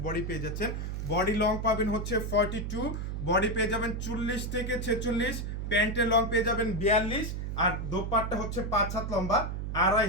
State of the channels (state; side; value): noise; right; hum, 4 dB below the sound